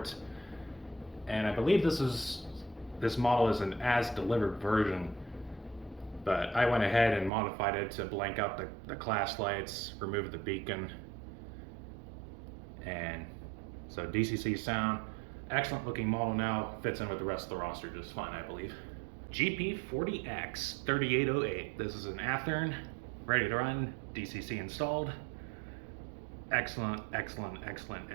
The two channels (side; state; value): left; drops out; at 7.3 s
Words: And I believe this model is an as-delivered version, but I went ahead and modified it to blank out the class lights, remove the beacon, and so DCC sound. Excellent looking model now, fits in with the rest of the roster just fine, I believe. GP40X 3808. This is an Athearn, ready to run, DCC installed. Excellent, excellent, excellent